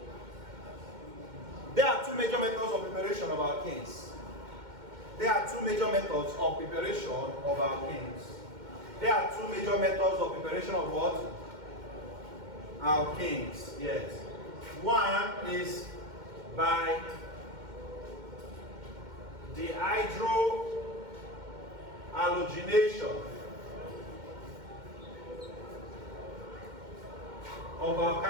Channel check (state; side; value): late; left; 2.1 ms